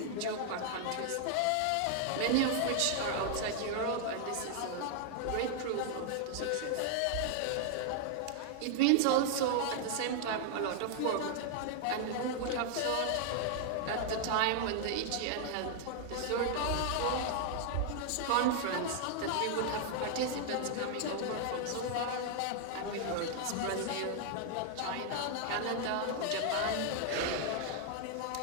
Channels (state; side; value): different; both; correlation 0.00